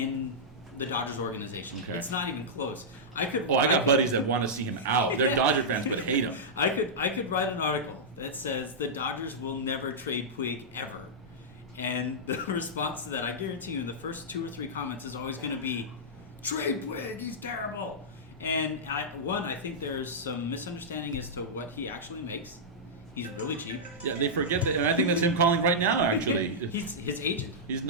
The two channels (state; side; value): normal; both; correlation -0.11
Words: the Dodgers organization. Okay. It's not even close. I got buddies that want to see him out. They're Dodger fans, but hate him. I could write an article that says the Dodgers will never trade Puig ever. And the response to that, I guarantee you, in the first 2 or 3 comments is always going to be, trade Puig, he's terrible. And I think there's some misunderstanding as to what he actually makes. He's really cheap. Yeah, they forget that, and I think that's him calling right now, actually. He's his agent. He's